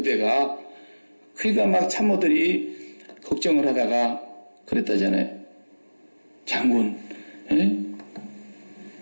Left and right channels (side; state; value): both; inverted; correlation -1.00